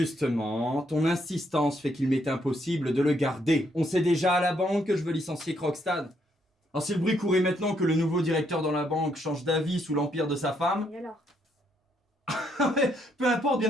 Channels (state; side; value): normal; both; correlation 0.73